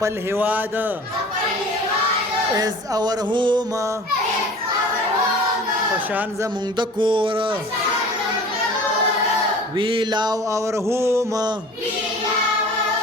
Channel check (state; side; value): normal; both; correlation 0.43